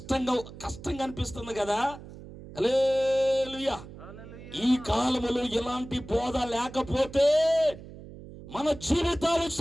అనిపిస్తుంది కదా. హల్లెలూయా. ఈ కాలములో ఇలాంటి బోధ లేకపోతే మన జీవితాలు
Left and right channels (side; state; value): right; noise; hum, 15 dB below the sound